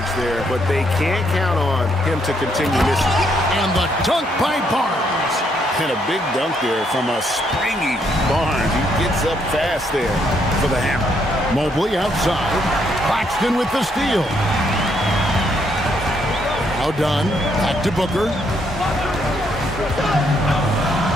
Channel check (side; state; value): both; normal; correlation 0.73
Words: there, but they can't count on him to continue missing. And the dunk by Barnes. And a big dunk there from a springy Barnes. He gets up fast there for the hammer. Mobley outside. Claxton with the steal. Now done. Back to Booker.